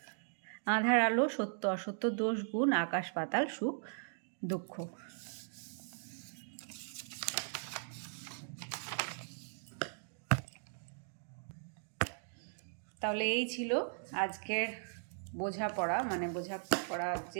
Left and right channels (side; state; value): left; silent; digital silence